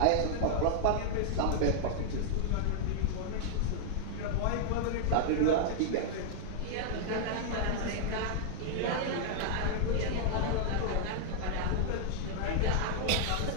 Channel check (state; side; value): different; both; correlation -0.01